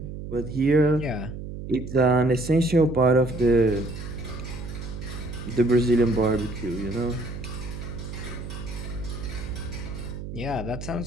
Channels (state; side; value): noise; right; hum, 9 dB below the sound